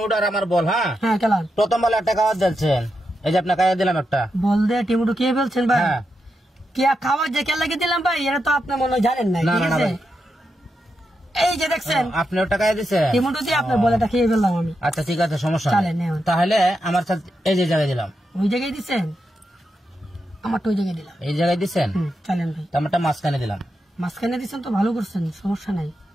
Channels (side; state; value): both; normal; correlation 0.86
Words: আর আমার বল। হ্যাঁ হ্যাঁ খেলাম। প্রথম বলে একটা খাবার দিচ্ছেন, এই যে আপনার খাইয়া দিলাম একটা বল দে টেমুটো কে বলছেন ভাই? হ্যাঁ কে খাবার যে কে লাগিয়ে দিলাম ভাই, এটা তো আপনি মনে হয় জানেন না। না, ঠিক না, আছে, ভাই। এই যে দেখছেন আপনি ওটা খাইয়া দিছেন টেমুটো দিয়ে আপনার বলেটা খেয়ে ফেললাম আমি। আচ্ছা ঠিক আছে, সমস্যা চলেন, নেই। নেন। তাহলে আমার সাথে এই যে জায়গায় দিলাম, ওই জায়গায় দিচ্ছেন, আমারটা ওই জায়গায় দিলাম। এই জায়গায় দিচ্ছেন, চলেন ভাই। তো আমারটা মাঝখানে দিলাম। মাঝখানে দিচ্ছেন তো ভালো করছেন, সমস্যা নাই।